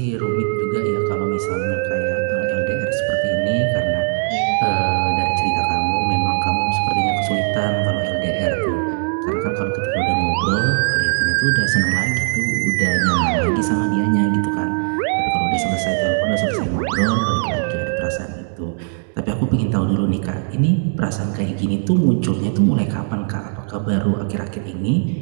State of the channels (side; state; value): left; silent; digital silence